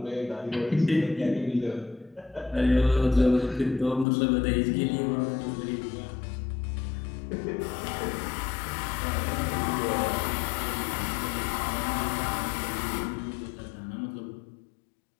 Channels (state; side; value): drops out; right; at 4.0 s